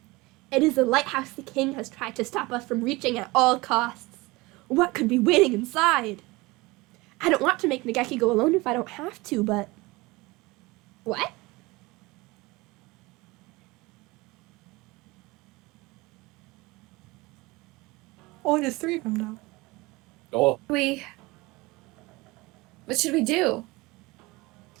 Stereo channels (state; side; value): quieter; left; 22.5 dB